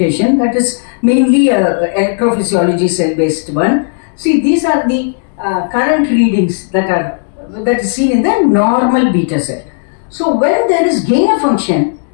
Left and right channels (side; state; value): right; silent; digital silence